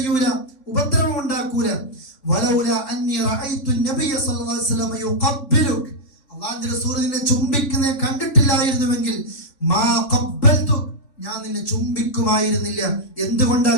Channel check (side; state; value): right; late; 3.5 ms